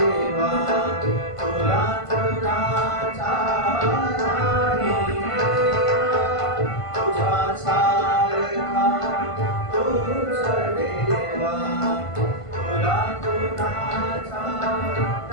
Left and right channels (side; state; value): right; late; 1.5 ms